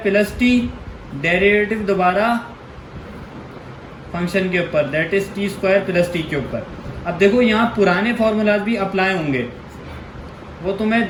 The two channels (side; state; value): both; identical; correlation 1.00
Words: T, derivative दोबारा फंक्शन के ऊपर, that is T square plus T के ऊपर। अब देखो यहाँ पुराने फॉर्मूलाज भी अप्लाई होंगे, वो तुम्हें